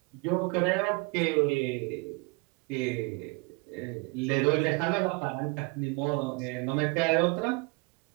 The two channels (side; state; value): left; quieter; 28.6 dB